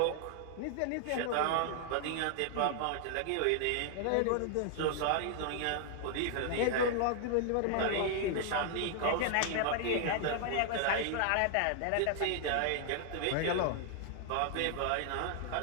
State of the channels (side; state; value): both; different; correlation 0.00